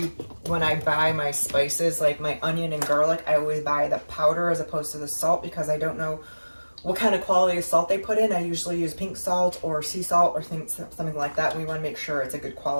when I buy my spices, like my onion and garlic, I always buy the powder as opposed to the salt, because I don't know what kind of quality of salt they put in. I usually use pink salt or sea salt or something like that. We want to make sure it's a good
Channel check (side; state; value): both; inverted; correlation -1.00